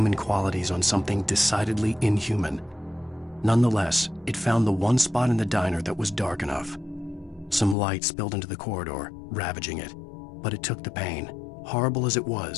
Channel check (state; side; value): drops out; right; at 7.8 s